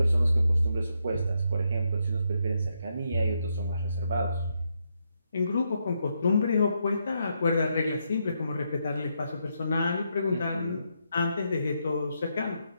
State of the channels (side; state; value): both; inverted; correlation -0.80